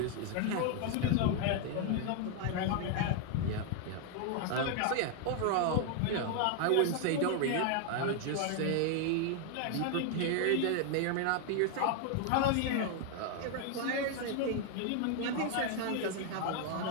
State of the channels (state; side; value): different; both; correlation 0.00